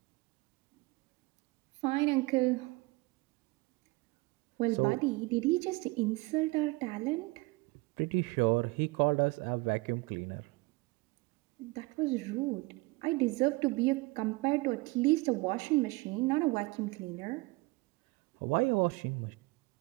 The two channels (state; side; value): quieter; left; 24.2 dB